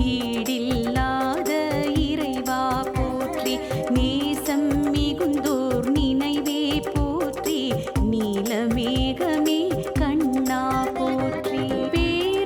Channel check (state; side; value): identical; both; correlation 1.00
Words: ஈடில்லாத இறைவா போற்றி நேசம் மிகுந்தோர் நினைவே போற்றி நீலமேகமே கண்ணா போற்றி